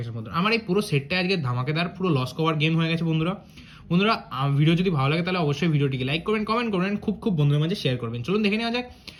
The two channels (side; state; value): both; identical; correlation 1.00